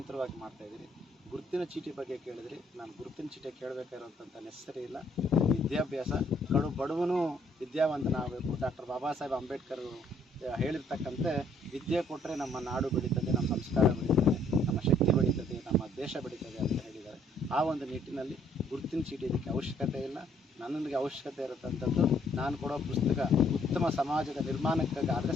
ಮಾಡ್ತಾಯಿದ್ದೀವಿ. ಗುರುತಿನ ಚೀಟಿ ಬಗ್ಗೆ ಕೇಳಿದ್ರಿ, ನಾನು ಗುರುತಿನ ಚೀಟಿ ಕೇಳಬೇಕಾಗಿರೋಂಥ ನೆಸರಿ ಇಲ್ಲ. ವಿದ್ಯಾಭ್ಯಾಸ ಬಡವನು ವಿದ್ಯಾವಂತನಾಗಬೇಕು. ಡಾಕ್ಟರ್ ಬಾಬಾ ಸಾಹೇಬ್ ಅಂಬೇಡ್ಕರ್ ಹೇಳಿರ್ತಕ್ಕಂತೆ ವಿದ್ಯೆ ಕೊಟ್ಟರೆ ನಮ್ಮ ನಾಡು ಬೆಳೀತದೆ, ನಮ್ಮ ಸಂಸ್ಕಾರ ಬೆಳೀತದೆ, ನಮ್ಮ ಶಕ್ತಿ ಬೆಳೀತದೆ, ನಮ್ಮ ದೇಶ ಬೆಳೀತದೆ ಅಂತ ಹೇಳಿದ್ದಾರೆ. ಆ ಒಂದು ನಿಟ್ಟಿನಲ್ಲಿ ಗುರುತಿನ ಚೀಟಿ ಇದಕ್ಕೆ ಅವಶ್ಯಕತೆ ಇಲ್ಲ. ನನಗೆ ಅವಶ್ಯಕತೆ ಇರತಕ್ಕಂಥದ್ದು ನಾನು ಕೊಡೋ ಪುಸ್ತಕ ಉತ್ತಮ ಸಮಾಜದ ನಿರ್ಮಾಣಕ್ಕಾದರೆ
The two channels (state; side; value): normal; both; correlation 0.65